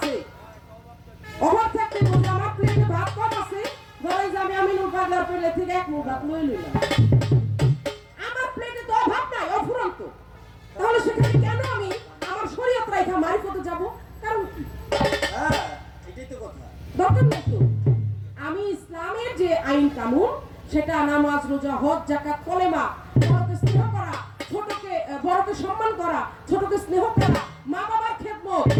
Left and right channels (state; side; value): identical; both; correlation 1.00